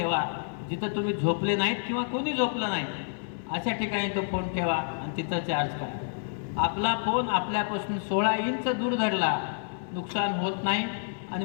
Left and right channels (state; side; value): silent; right; 59 dB below the other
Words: जिथं तुम्ही झोपले नाहीत किंवा कोणी झोपलं नाही अशा ठिकाणी तो फोन ठेवा आणि तिथं चार्ज करा. आपला फोन आपल्यापासून 16 इंच दूर धरला, नुकसान होत नाही. आणि